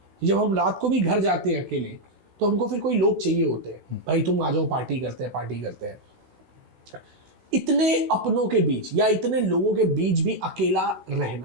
जब हम रात को भी घर जाते हैं अकेले तो हमको फिर कोई लोग चाहिए होते हैं, भाई तुम आ जाओ, पार्टी करते हैं, पार्टी करते हैं। इतने अपनों के बीच या इतने लोगों के बीच भी अकेला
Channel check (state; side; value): late; left; 16 ms